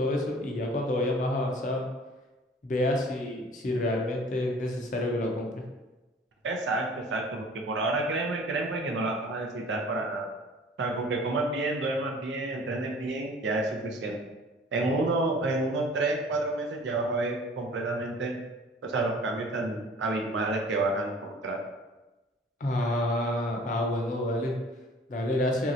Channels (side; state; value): both; normal; correlation 0.48